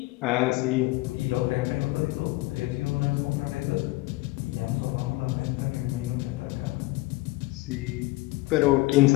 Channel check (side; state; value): right; quieter; 21.1 dB